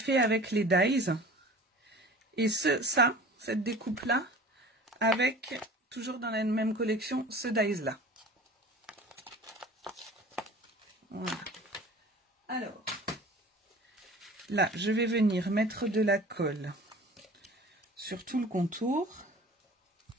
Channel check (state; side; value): normal; both; correlation 0.42